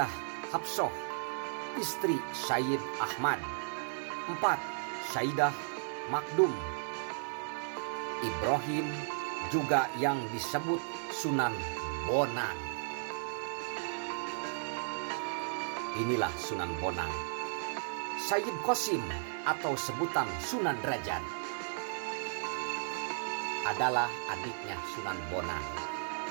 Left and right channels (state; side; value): silent; left; digital silence